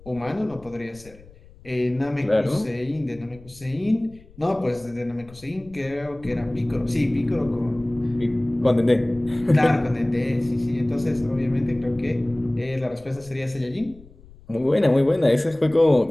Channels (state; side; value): noise; left; rumble, 23 dB below the sound